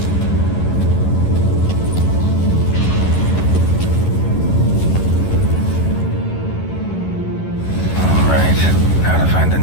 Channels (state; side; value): late; right; 11 ms